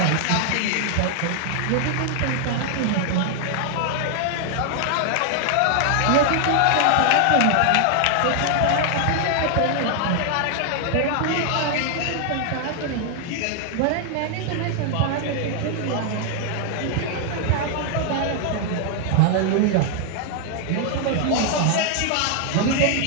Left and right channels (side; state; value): both; different; correlation 0.00